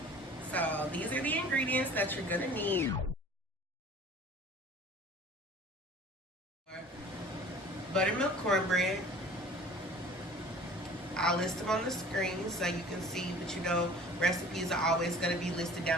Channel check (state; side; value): normal; both; correlation 0.46